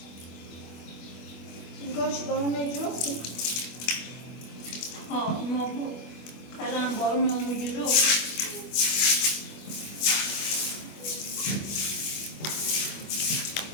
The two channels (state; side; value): late; right; 25 ms